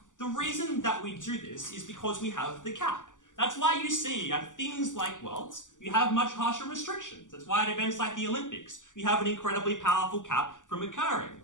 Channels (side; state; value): right; late; 0.87 ms